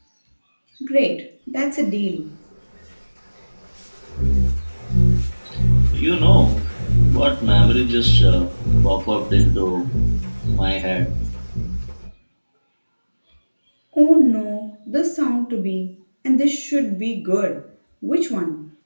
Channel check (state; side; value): inverted; both; correlation -1.00